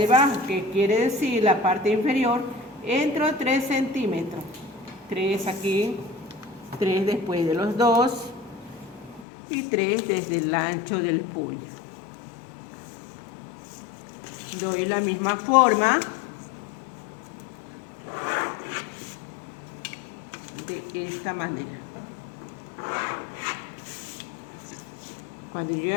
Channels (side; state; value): right; drops out; at 9.2 s